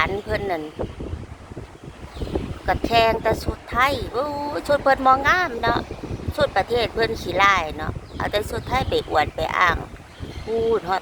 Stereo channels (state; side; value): identical; both; correlation 1.00